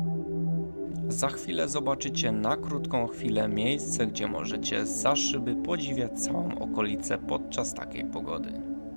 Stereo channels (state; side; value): inverted; both; correlation -1.00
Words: Za chwilę zobaczycie na krótką chwilę miejsce, gdzie możecie za szyby podziwiać całą okolicę podczas takiej pogody.